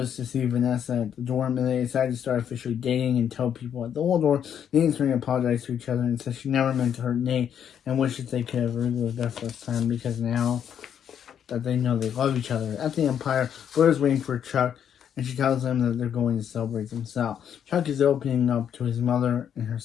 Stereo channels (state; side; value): quieter; right; 8.8 dB